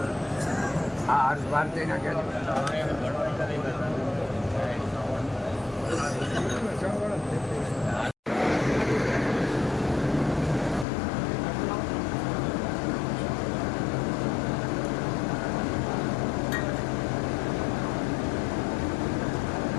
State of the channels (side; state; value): right; drops out; at 10.9 s